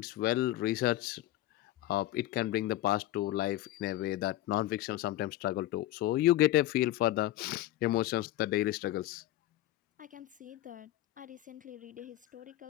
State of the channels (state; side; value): quieter; right; 15.0 dB